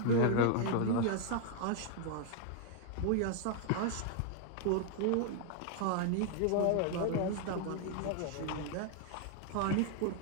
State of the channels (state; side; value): different; both; correlation 0.00